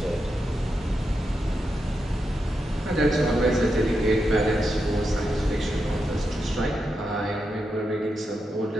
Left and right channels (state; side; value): normal; both; correlation 0.86